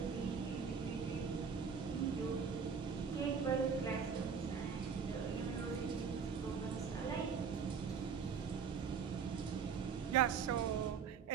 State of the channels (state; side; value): quieter; left; 6.3 dB